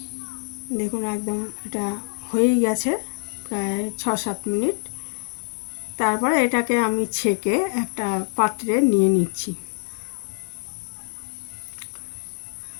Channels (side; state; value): right; silent; 62 dB below the other